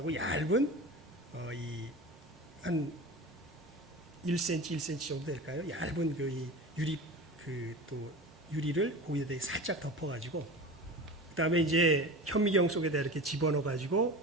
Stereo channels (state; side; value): normal; both; correlation 0.32